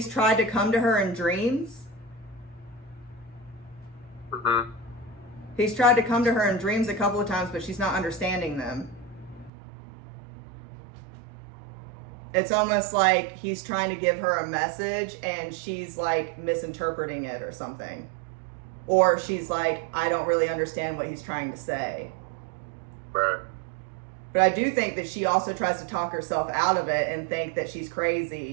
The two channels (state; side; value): drops out; left; at 9.5 s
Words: tried to come to her in dreams. Mm-hmm. He's tried to come to her in dreams a couple of times, but she's not understanding them. It's almost like he's trying to give her a message and she's like misinterpreting it or something. Or she's like, I don't really understand what he's trying to say. Right. But I do think that she also tries to talk herself out of it and think that she's